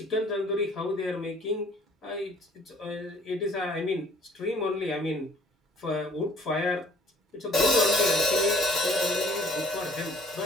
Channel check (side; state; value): both; normal; correlation 0.55